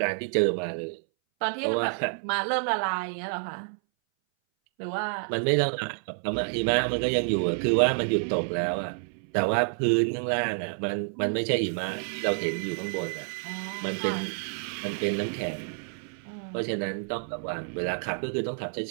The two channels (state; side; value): silent; left; 59 dB below the other